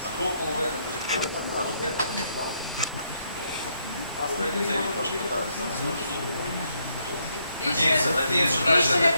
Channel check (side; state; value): both; inverted; correlation -0.74